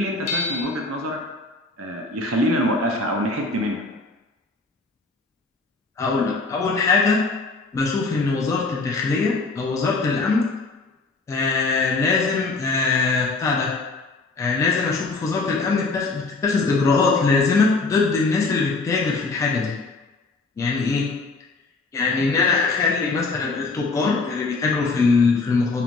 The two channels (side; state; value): right; quieter; 3.7 dB